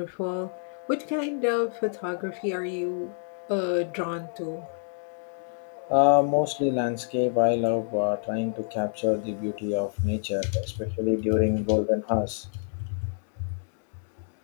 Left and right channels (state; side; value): silent; right; digital silence